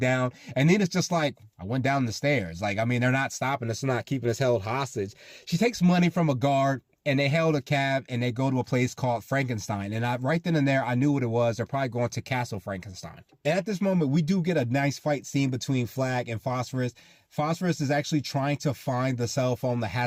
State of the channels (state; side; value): identical; both; correlation 1.00